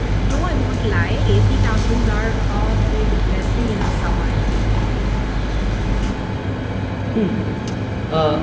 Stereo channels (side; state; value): both; identical; correlation 1.00